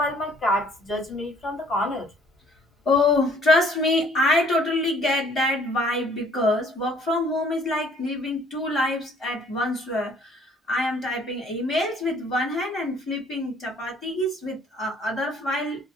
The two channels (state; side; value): normal; both; correlation 0.58